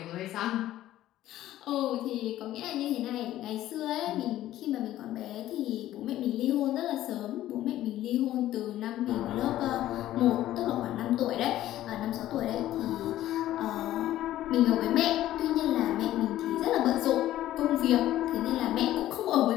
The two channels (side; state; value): right; quieter; 13.8 dB